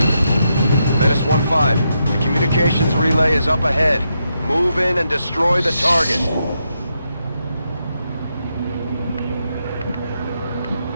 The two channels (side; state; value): both; inverted; correlation -0.82